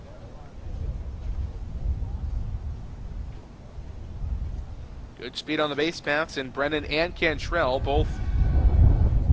Good speed on the base paths, and Brennan and Cantrell both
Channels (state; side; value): identical; both; correlation 1.00